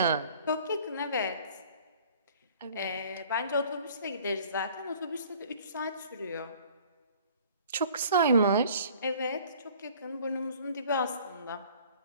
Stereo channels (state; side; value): inverted; both; correlation -0.52